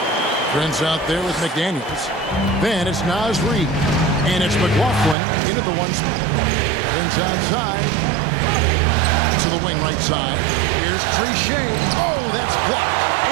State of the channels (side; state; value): left; drops out; at 5.2 s